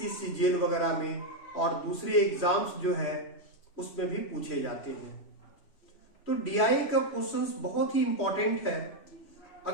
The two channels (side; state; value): right; late; 3.0 ms